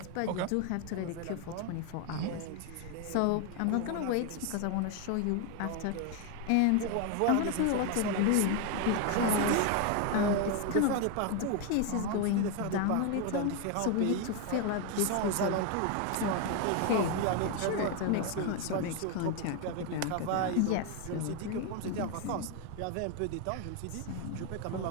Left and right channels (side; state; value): both; different; correlation 0.01